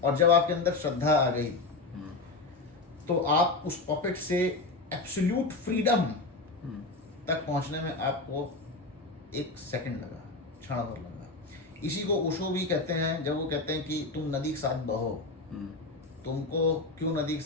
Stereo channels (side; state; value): right; quieter; 3.4 dB